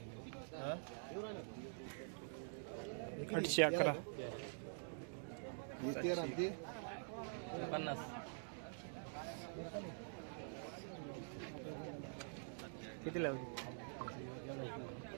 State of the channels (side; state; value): left; silent; digital silence